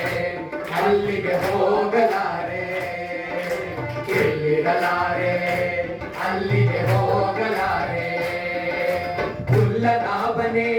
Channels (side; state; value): both; identical; correlation 1.00